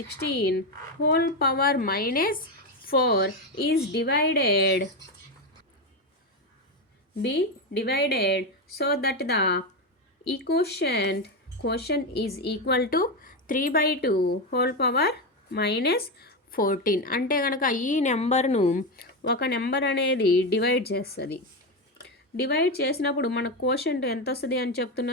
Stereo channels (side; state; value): both; normal; correlation 0.12